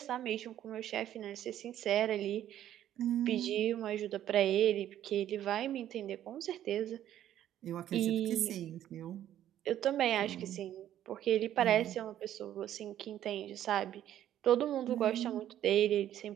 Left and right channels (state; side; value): quieter; left; 11.7 dB